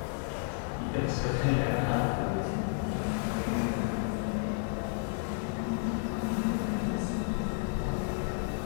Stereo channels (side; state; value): right; silent; 57 dB below the other